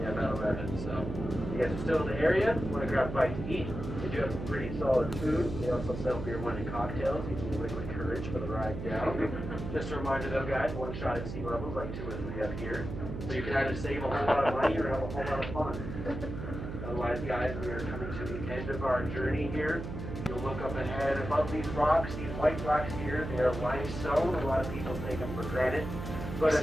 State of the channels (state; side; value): noise; right; hum, 7 dB below the sound